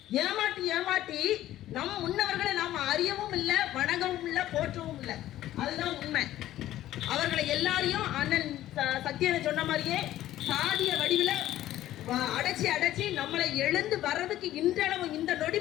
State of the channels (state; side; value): quieter; right; 13.8 dB